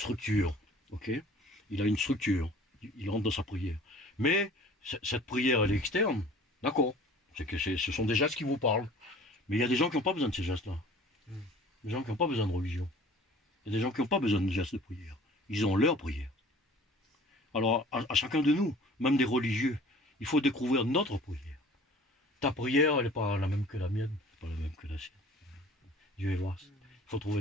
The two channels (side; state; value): both; normal; correlation 0.48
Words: ok? Il a une structure, il rentre dans sa prière. Mais cette prière, elle est externe, d'accord? C'est que ce sont des gestes qui vous parlent. Mais il y a des gens qui n'ont pas besoin de ces gestes-là. Des gens qui n'ont pas besoin de religion. Il y a des gens qui n'ont pas besoin de gestes de prière. Ils ont leur prière. Alors, à chacun de nous, même des religieux, il faut découvrir notre prière. Ta prière, elle n'est pas la même que la mienne, pas la même que la sienne. Dieu est vaste. Il faut